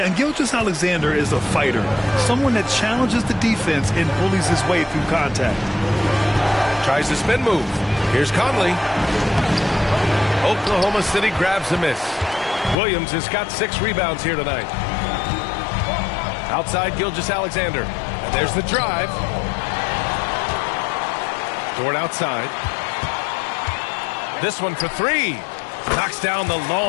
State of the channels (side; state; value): right; drops out; at 12.8 s